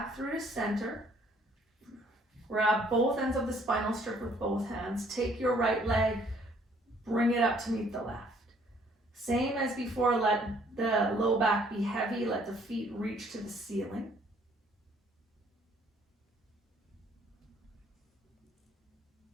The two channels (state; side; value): normal; both; correlation 0.62